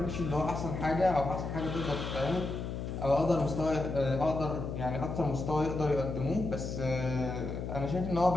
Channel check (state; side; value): noise; left; hum, 5 dB below the sound